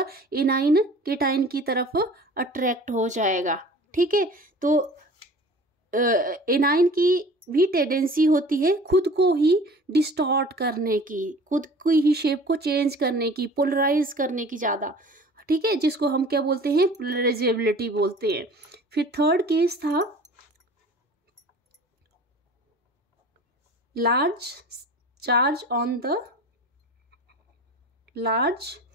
एनाइन केटाइन की तरफ अट्रैक्ट हो जाएगा, ठीक है। तो एनाइन की भी टेंडेंसी होती है खुद को ही डिस्टॉर्ट करने की, खुद की ही शेप को चेंज करने की, पोलराइज करने की ज़्यादा, ठीक है, जिसको हम क्या बोलते हैं, पोलराइजेबिलिटी बोलते हैं। फिर थर्ड केस था large charge on the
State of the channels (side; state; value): both; normal; correlation 0.44